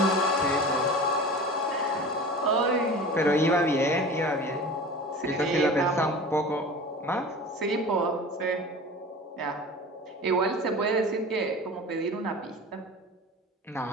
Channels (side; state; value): both; normal; correlation 0.37